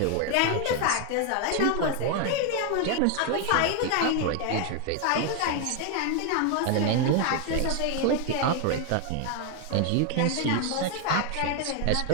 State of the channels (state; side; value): different; both; correlation 0.01